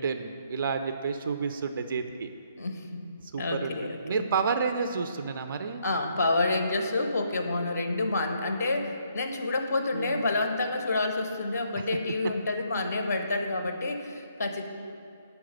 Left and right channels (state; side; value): inverted; both; correlation -0.71